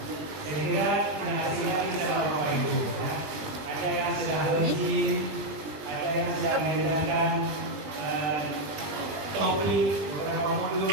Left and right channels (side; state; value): left; late; 20 ms